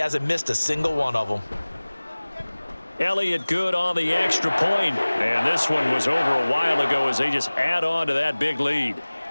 missed a single one of them. Elliott good on the extra point. And this one was over a while ago as they just add on to that big lead.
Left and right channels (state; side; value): inverted; both; correlation -1.00